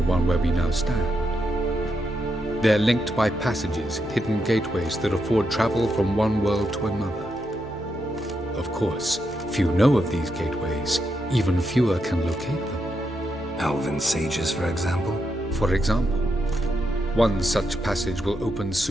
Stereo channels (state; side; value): normal; both; correlation 0.82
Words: one where we now stand. They're linked by passages, hidden gateways that afford travel from one world to another. Of course, few know of these gateways, even fewer can locate them. Elven sages, for example? For example. One such passage will open